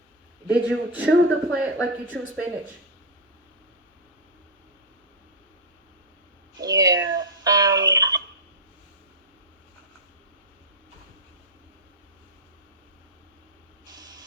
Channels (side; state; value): both; normal; correlation -0.03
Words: Did you chew the plant like you chew spinach? Yeah.